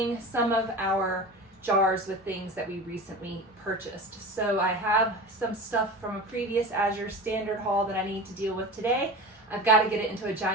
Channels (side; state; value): both; normal; correlation 0.31